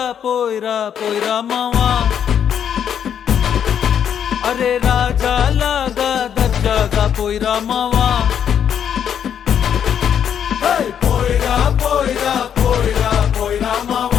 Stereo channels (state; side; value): quieter; right; 8.7 dB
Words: పోయిరా పోయిరా మావా, అరే రాజా లాగా దర్జాగా పోయిరా మావా, పోయిరా పోయిరా పోయిరా పోయిరా